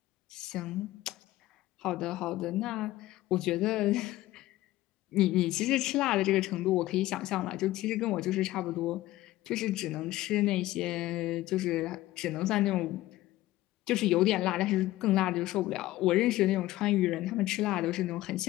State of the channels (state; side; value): quieter; right; 16.3 dB